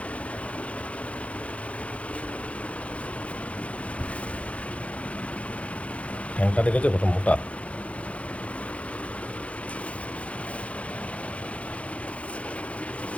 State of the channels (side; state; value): right; late; 0.063 ms